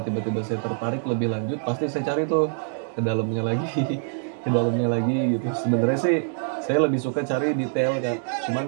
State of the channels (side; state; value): left; silent; digital silence